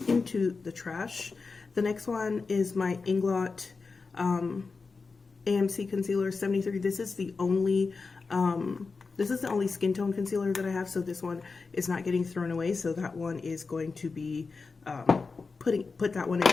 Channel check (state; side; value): quieter; right; 4.4 dB